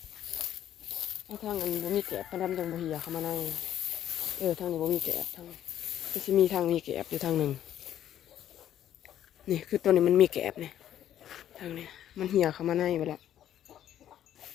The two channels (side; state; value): right; quieter; 11.1 dB